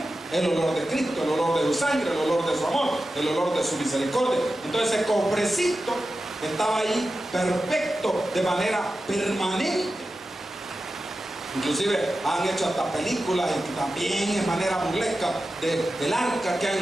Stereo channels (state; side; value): normal; both; correlation 0.93